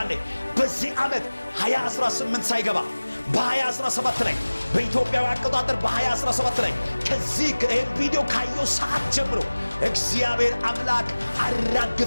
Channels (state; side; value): inverted; both; correlation -1.00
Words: አለ። በዚህ ዓመት 2018 ሳይገባ በ2017 ላይ በኢትዮጵያዊ አቆጣጠር በ2017 ላይ ከዚህ ቪዲዮ ካየው ሰዓት ጀምሮ እግዚአብሔር አምላክ